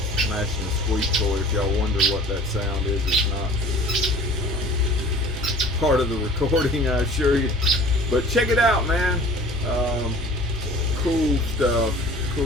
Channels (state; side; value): normal; both; correlation 0.46